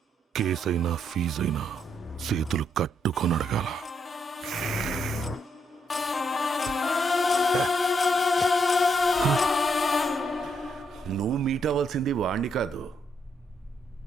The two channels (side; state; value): both; normal; correlation 0.76